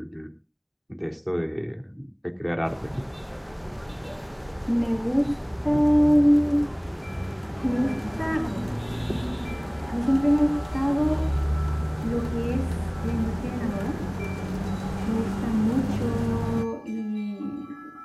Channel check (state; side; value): identical; both; correlation 1.00